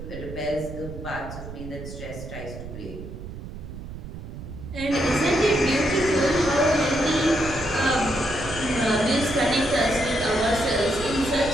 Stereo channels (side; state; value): right; noise; rumble, 11 dB below the sound